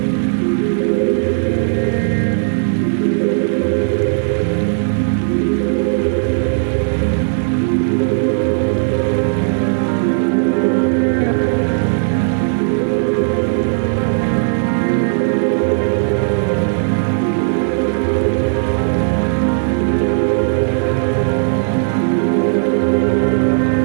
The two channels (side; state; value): left; silent; 56 dB below the other